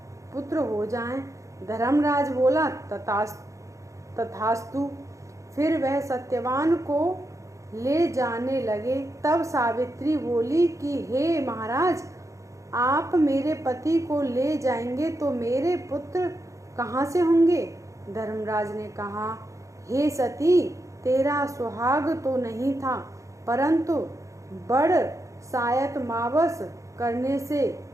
पुत्र हो जाएं। धर्मराज बोला, तथास्तु। फिर वह सत्यवान को ले जाने लगे। तब सावित्री बोली कि हे महाराज, आप मेरे पति को ले जाएंगे तो मेरे पुत्र कहाँ से होंगे? धर्मराज ने कहा, हे सती, तेरा सुहाग तो नहीं था, परंतु बड़ सायत मावस करने से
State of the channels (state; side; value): late; left; 0.15 ms